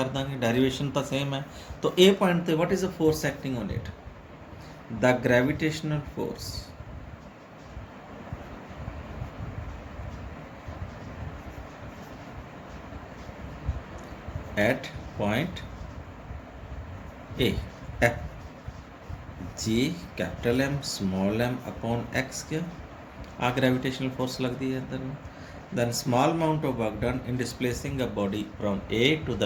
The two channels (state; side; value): identical; both; correlation 1.00